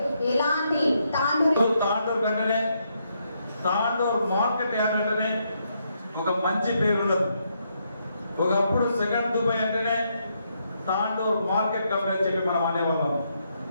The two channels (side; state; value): both; inverted; correlation -0.77